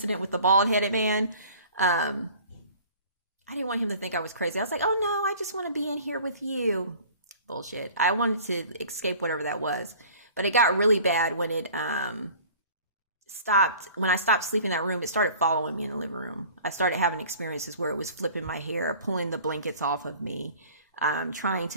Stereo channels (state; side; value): inverted; both; correlation -0.47